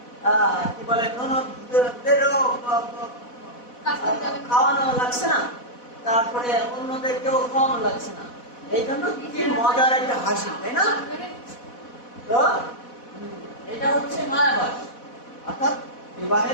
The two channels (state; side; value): late; right; 4.1 ms